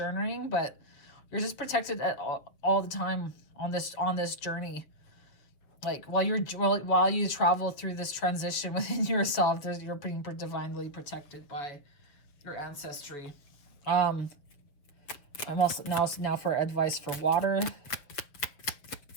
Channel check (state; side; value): late; right; 7.1 ms